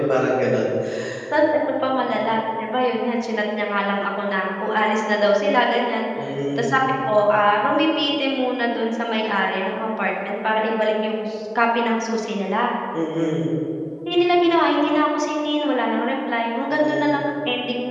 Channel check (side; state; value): both; identical; correlation 1.00